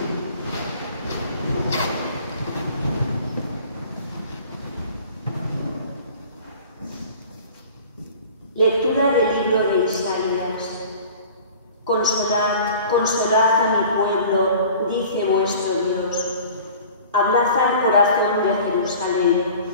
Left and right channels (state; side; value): inverted; both; correlation -0.44